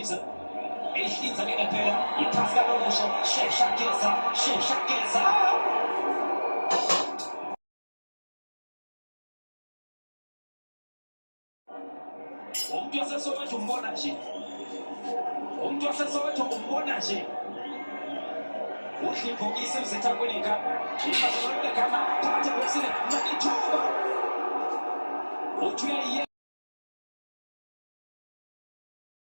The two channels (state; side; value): inverted; both; correlation -1.00